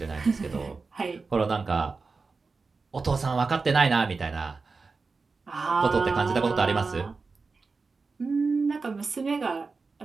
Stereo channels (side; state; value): left; quieter; 4.3 dB